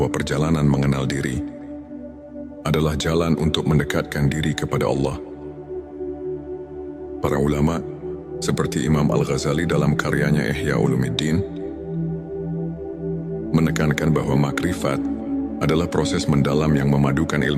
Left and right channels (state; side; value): identical; both; correlation 1.00